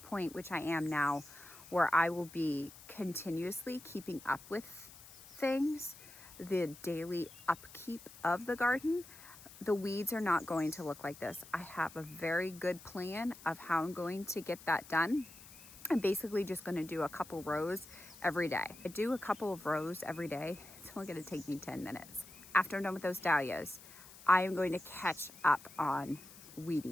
which I am now, where I will be continuously keeping up with things, the daily upkeep of the garden, the weeds are not going to look like this. I have a very good plan of how I'm going to get that done. I'm basically just going to do a couple rows every day. I do a couple of rows every day. It's only going to take me 10 minutes. After I'm done with those dahlias, I am going to catch up on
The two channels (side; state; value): left; noise; hiss, 19 dB below the sound